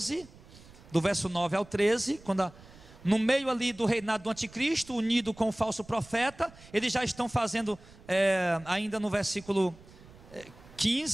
do verso 9 ao 13, quando no meio ali do reinado do anticristo, unido com o falso profeta. Eles já estão fazendo, ainda no versículo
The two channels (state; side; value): noise; right; rumble, 22 dB below the sound